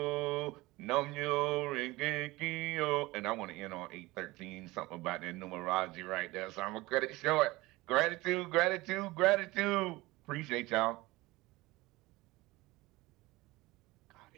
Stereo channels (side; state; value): left; quieter; 20.4 dB